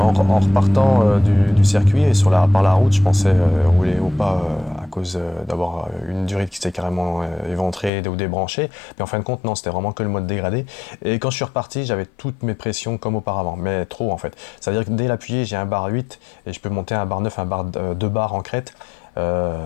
repartant du circuit et par la route, je pensais rouler au pas à cause d'avoir une durite qui s'était carrément éventrée ou débranchée. Mais en fin de compte, non, c'était vraiment que le mode dégradé. Et quand je suis reparti, j'avais toutes mes pressions comme auparavant, mais trop en fait. C'est-à-dire que dès l'appuyer, j'ai un bar 8 et je peux monter un bar 9, un bar 2 bars en crête.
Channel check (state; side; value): drops out; right; at 7.9 s